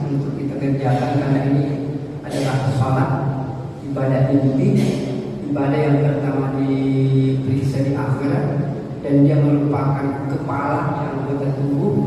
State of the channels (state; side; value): identical; both; correlation 1.00